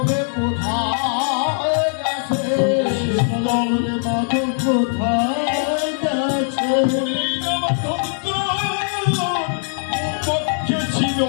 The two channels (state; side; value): silent; right; digital silence